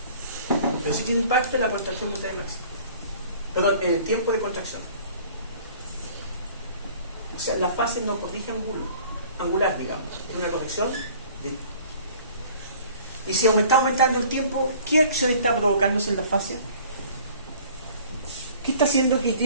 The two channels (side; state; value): both; inverted; correlation -0.50